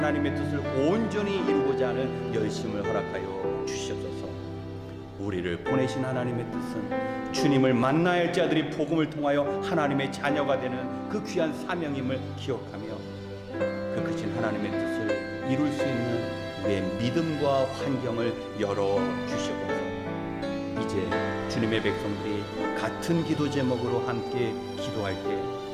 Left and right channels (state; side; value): identical; both; correlation 1.00